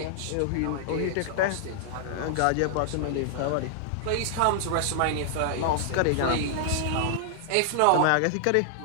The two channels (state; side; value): different; both; correlation -0.01